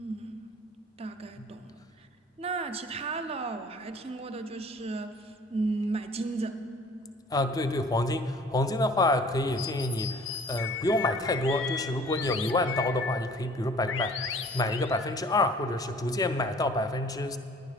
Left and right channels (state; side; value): normal; both; correlation 0.51